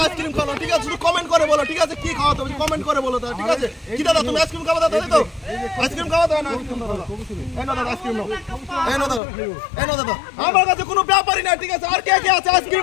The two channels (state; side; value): drops out; right; at 9.2 s